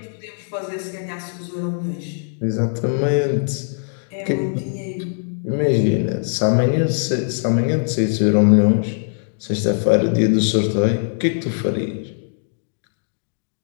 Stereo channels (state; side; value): silent; right; digital silence